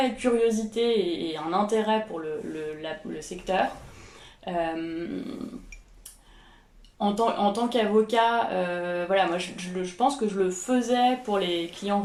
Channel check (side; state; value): both; identical; correlation 1.00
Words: curiosité et un intérêt pour le secteur. Euh, en tant qu'avocat, voilà, moi je pense que je le faisais pour les clients